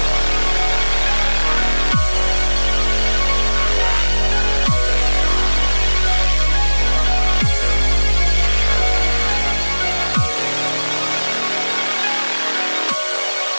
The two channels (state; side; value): inverted; both; correlation -1.00